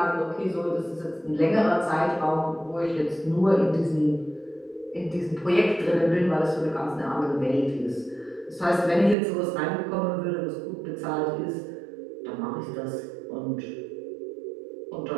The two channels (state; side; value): drops out; left; at 9.2 s